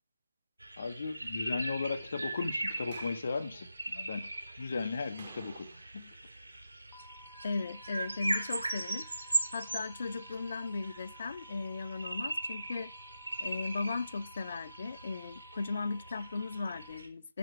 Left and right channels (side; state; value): both; inverted; correlation -0.89